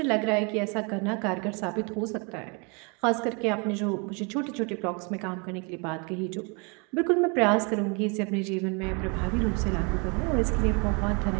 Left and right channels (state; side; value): quieter; left; 32.8 dB